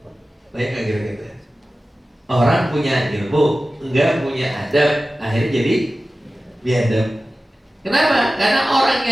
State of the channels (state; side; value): normal; both; correlation 0.95